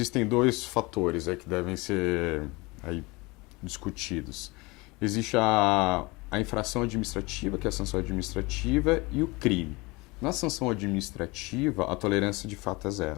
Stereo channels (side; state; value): right; quieter; 24.5 dB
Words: dois fatores que devem ser discutidos. Existe a infração administrativa, que é a sanção administrativa, e o crime. Na sanção administrativa, a tolerância de fato é